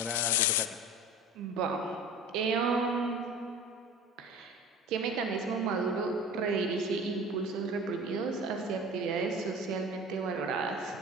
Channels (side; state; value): both; normal; correlation 0.37